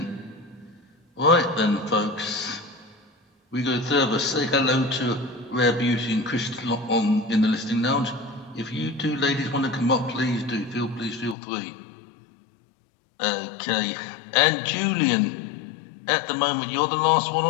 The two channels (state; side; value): drops out; right; at 11.4 s